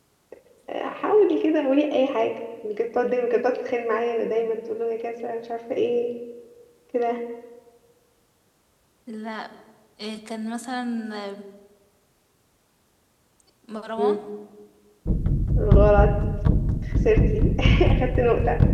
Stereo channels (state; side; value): identical; both; correlation 1.00